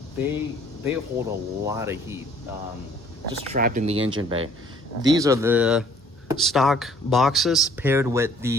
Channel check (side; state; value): both; normal; correlation 0.58